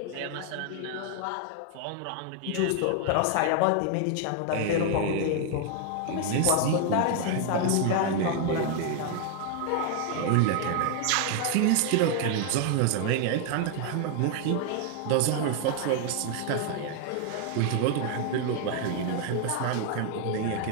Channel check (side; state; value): both; different; correlation 0.00